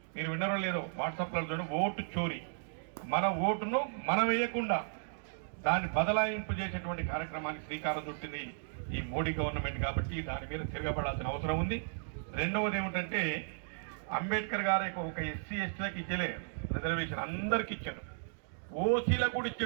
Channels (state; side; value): silent; left; digital silence